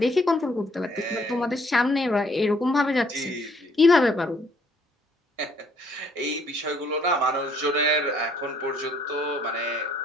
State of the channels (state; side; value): normal; both; correlation 0.65